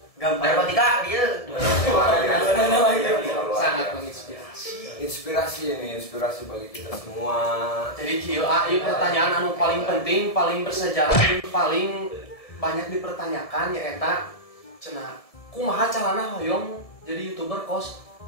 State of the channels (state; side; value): late; right; 1.7 ms